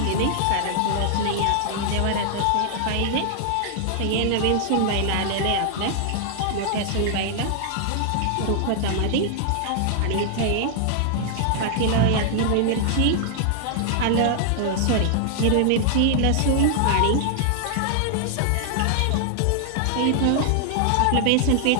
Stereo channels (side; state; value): both; different; correlation -0.01